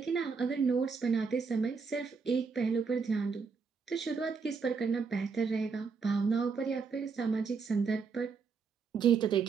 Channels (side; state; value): left; quieter; 5.2 dB